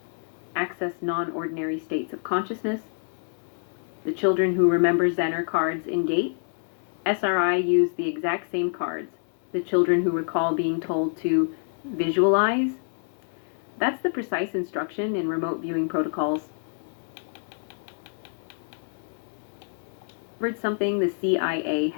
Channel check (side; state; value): right; silent; 60 dB below the other